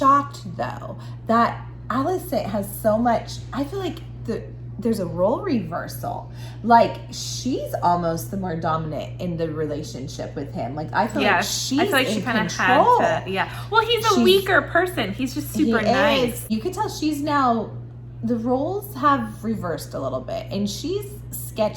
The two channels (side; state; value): both; identical; correlation 1.00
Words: though, that Alicent has so much. I feel like there's a role reversal. Like, she's almost the more dominant in the relationship with him. Like, I feel like she's in control. Had to. Yeah. Well, he's a weaker person. He's just super nice. You can tell she's now. The roles have reversed a little bit, and she's